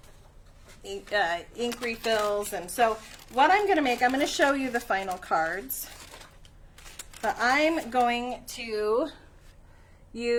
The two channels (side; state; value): both; identical; correlation 1.00